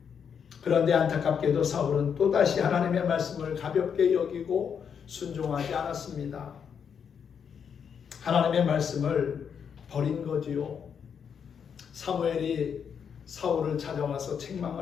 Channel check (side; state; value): right; quieter; 7.3 dB